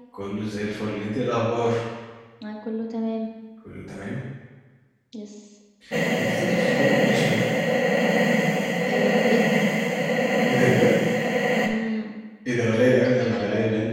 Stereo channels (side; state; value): both; identical; correlation 1.00